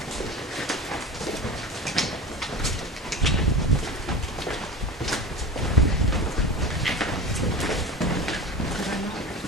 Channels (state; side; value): normal; both; correlation 0.31